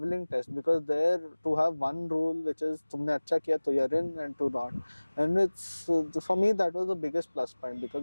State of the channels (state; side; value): inverted; both; correlation -1.00